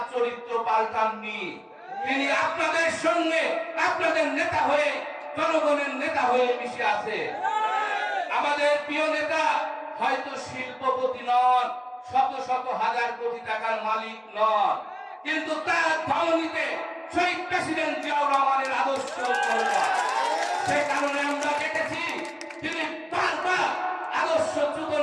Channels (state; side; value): identical; both; correlation 1.00